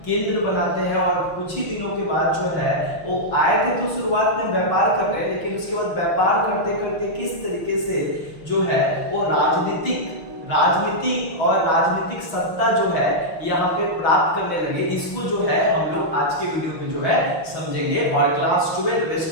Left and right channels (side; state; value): right; late; 6.2 ms